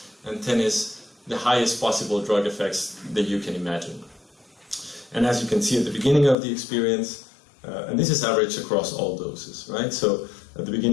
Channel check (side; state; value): right; drops out; at 6.4 s